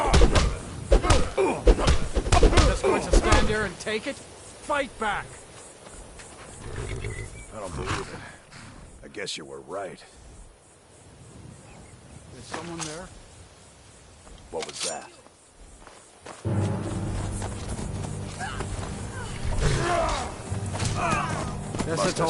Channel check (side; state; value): both; identical; correlation 1.00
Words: Just going to stand there and take it? Fight back! I don't believe it. I guess you were right. Is someone there? What was that? Guess Must it's have